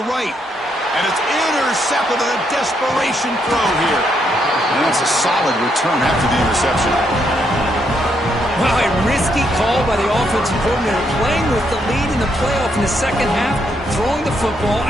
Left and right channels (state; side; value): normal; both; correlation 0.76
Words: right. And it's intercepted on a desperation throw here. And that's a solid return after the interception. Well, a risky call by the offensive coordinator, playing with the lead in the playoff in the second half, throwing the football.